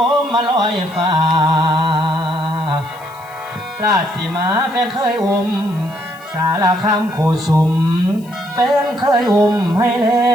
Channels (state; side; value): noise; left; hiss, 25 dB below the sound